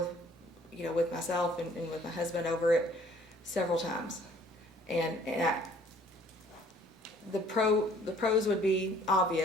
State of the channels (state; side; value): normal; both; correlation 0.57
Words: you know, with myself and with my husband over it several times. The pros would be